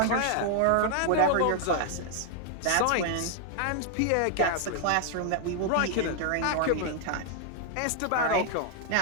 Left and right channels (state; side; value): different; both; correlation 0.00